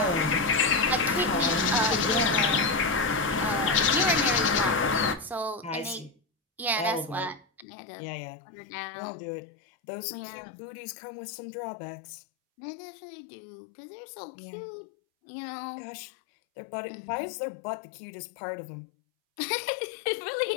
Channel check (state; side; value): drops out; right; at 7.7 s